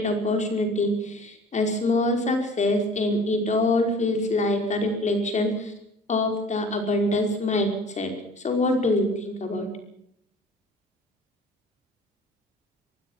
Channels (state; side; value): normal; both; correlation 0.46